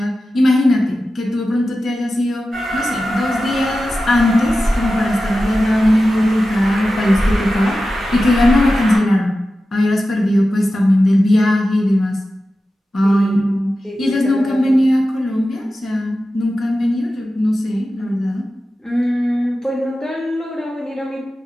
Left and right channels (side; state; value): both; normal; correlation 0.93